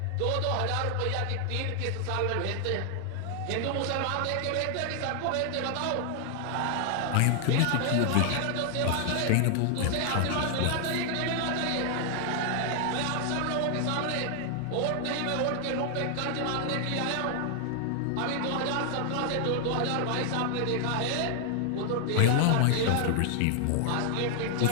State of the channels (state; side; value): different; both; correlation 0.00